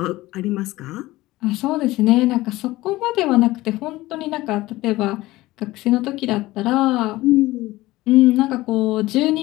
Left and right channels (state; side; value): quieter; right; 18.2 dB